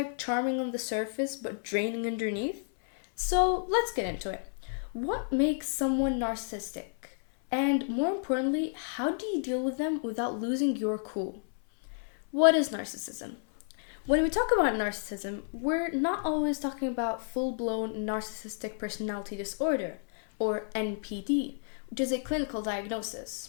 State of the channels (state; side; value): silent; right; 57 dB below the other